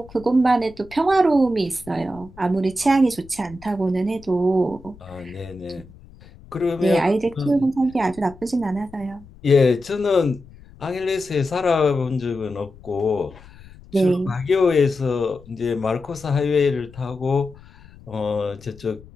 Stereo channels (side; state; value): left; noise; rumble, 22 dB below the sound